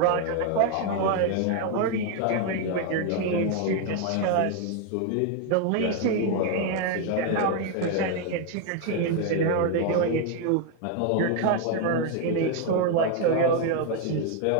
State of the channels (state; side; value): different; both; correlation 0.01